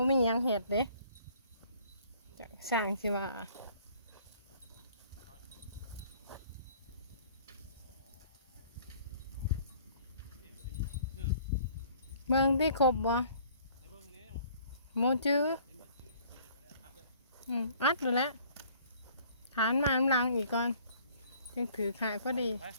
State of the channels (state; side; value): inverted; both; correlation -0.56